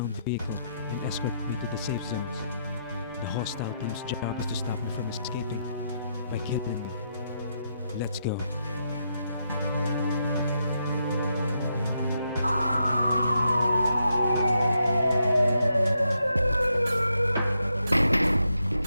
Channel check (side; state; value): both; inverted; correlation -0.80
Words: vehicle and escort me to the safe zones. The hostile team's job is to stop me from escaping by killing me. Let's go.